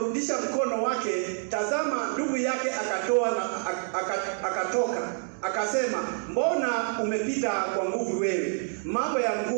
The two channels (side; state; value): left; silent; 60 dB below the other